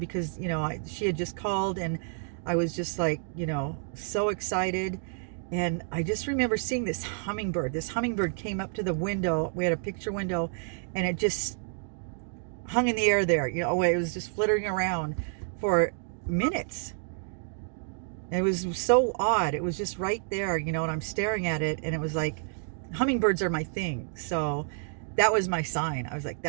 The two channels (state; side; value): silent; left; digital silence